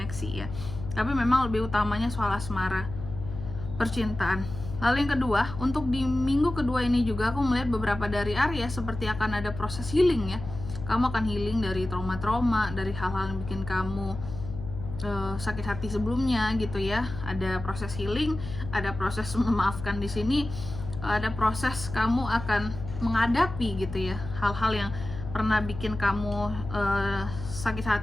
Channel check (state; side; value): noise; left; hum, 10 dB below the sound